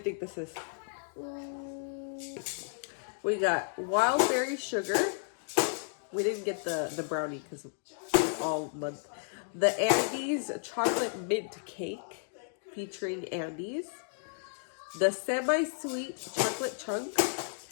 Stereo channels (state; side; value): silent; right; digital silence